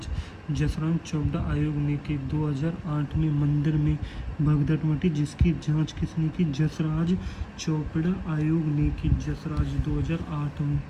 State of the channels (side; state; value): both; identical; correlation 1.00